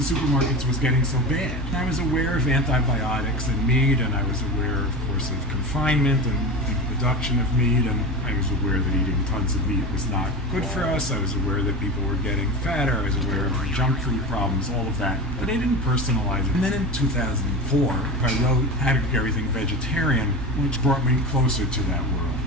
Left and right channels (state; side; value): normal; both; correlation 0.27